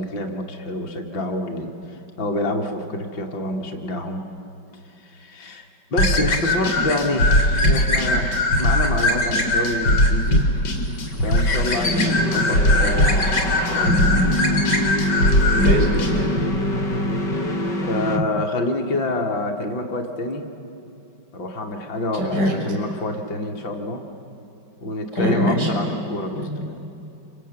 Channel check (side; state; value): right; late; 5.2 ms